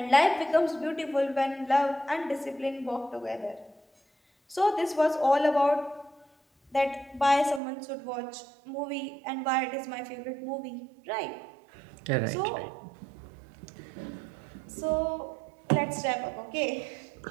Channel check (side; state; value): left; drops out; at 7.6 s